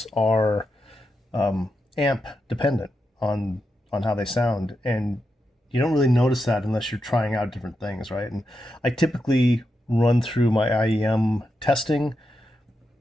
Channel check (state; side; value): normal; both; correlation 0.86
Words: are amp dependent on on how they sound, and you don't really notice that unless you're trying out different things, right? And I typically run through my IEM testing